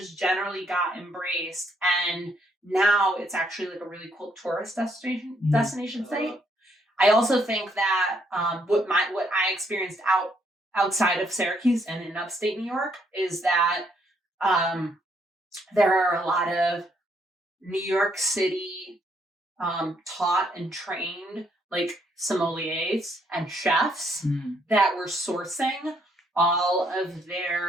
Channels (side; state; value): both; normal; correlation 0.71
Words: generally got embraced. And now it's actually like a really cool tourist destination site. I also think that what I experienced outside of Syracuse and in upstate New York is that there are a lot of New York City taught and trained like sommeliers and chefs that were sourcing all of